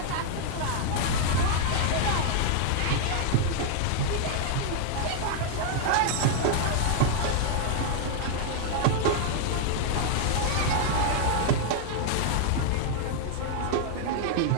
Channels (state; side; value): different; both; correlation -0.01